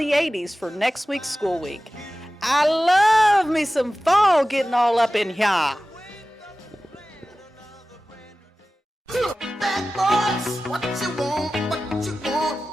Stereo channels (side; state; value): both; normal; correlation 0.96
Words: 80s for next week's school week. I love me some fall getting all up in here.